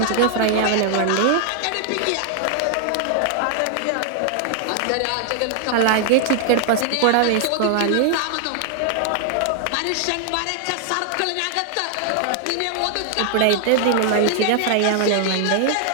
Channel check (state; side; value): different; both; correlation 0.00